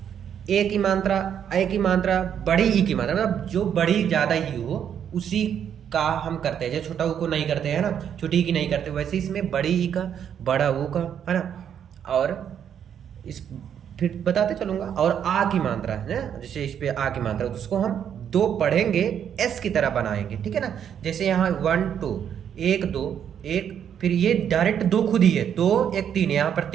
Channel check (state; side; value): quieter; left; 8.8 dB